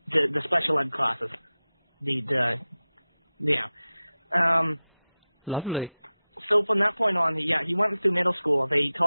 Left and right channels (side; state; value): both; inverted; correlation -0.95